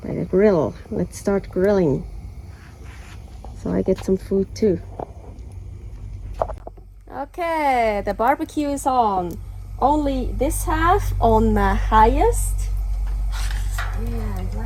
By the grill. Let's start grilling, so I get some food too. Okay, the barbecue is on. Only this half on the highest. And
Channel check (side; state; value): both; identical; correlation 1.00